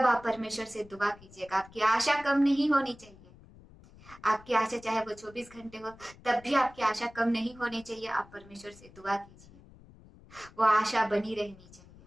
आप परमेश्वर से दुआ कीजिएगा। आपकी आशा कम नहीं होनी चाहिए। आपकी आशा चाहे वो 24 घंटे हो, तब भी आपकी आशा कम नहीं होनी चाहिए। आप परमेश्वर से दुआ कीजिए, वो आशा बनी रहनी चाहिए।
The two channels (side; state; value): left; noise; rumble, 23 dB below the sound